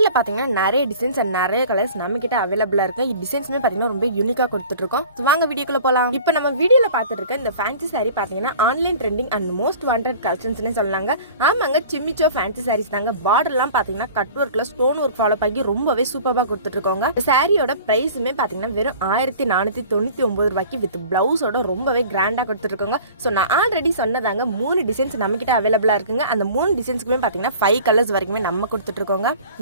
பார்த்தீங்கன்னா நிறைய டிசைன்ஸ் அண்ட் நிறைய கலர்ஸ் நம்மகிட்ட அவைலபிளாக இருக்கு. இந்த டிசைன்ஸுமே பார்த்தீங்கன்னா ரொம்ப யூனிக்காக கொடுத்துட்ருக்கோம். ஸோ வாங்க வீடியோக்குள்ள போகலாம். இப்போ நம்ம வீடியோவில் பார்த்துட்டு இருக்க இந்த ஃபேன்சி சாரீ பார்த்தீங்கன்னா online trending and most wanted கலெக்ஷன்ஸ்னே சொல்லலாங்க. ஆமாங்க, சிம்மிச்சோ ஃபேன்சி சாரீஸ் தாங்க. பார்டர்லாம் பார்த்தீங்கன்னா கட் ஒர்க்கில் ஸ்டோன் ஒர்க் ஃபாலோ பண்ணி ரொம்பவே சூப்பராக கொடுத்துட்ருக்கோங்க. சாரியோட ப்ரைஸுமே பார்த்தீங்கன்னா வெறும் 1499 ரூபாய்க்கு வித் பிளவுஸோட ரொம்பவே கிராண்டாக கொடுத்துருக்கோங்க. ஸோ நான் ஆல்ரெடி சொன்னதாங்க 3 டிசைன்ஸ் நம்ம கிட்ட அவைலபிளா இருக்குங்க. அந்த 3 டிசைன்ஸ்க்குமே பார்த்தீங்கன்னா 5 கலர்ஸ் வரைக்குமே நம்ம கொடுத்துட்டு இருக்கோங்க.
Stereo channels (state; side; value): inverted; both; correlation -0.44